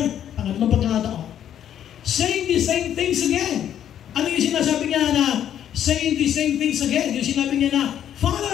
pangatlong pagkakataon, saying the same things again. Ano yung sinasabi niya na saying the same things again? Yung sinabi niya na,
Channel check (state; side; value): quieter; right; 10.2 dB